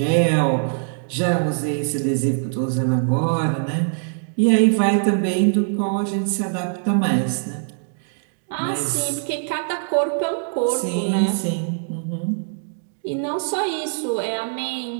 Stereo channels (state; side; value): silent; left; digital silence